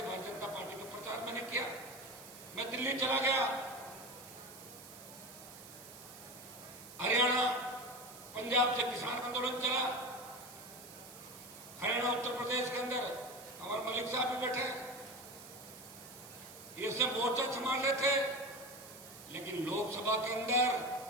भारतीय जनता पार्टी का प्रचार मैंने किया। मैं दिल्ली चला गया, हरियाणा, पंजाब से किसान आंदोलन चला, हरियाणा, उत्तर प्रदेश के अंदर हमारे मलिक साहब भी बैठे, ये सब मोर्चा संभाल रहे थे। लेकिन लोकसभा के अंदर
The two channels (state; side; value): noise; right; hiss, 16 dB below the sound